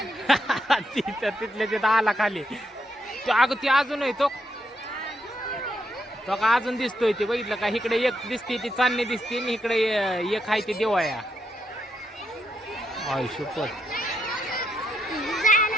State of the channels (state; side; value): normal; both; correlation 0.79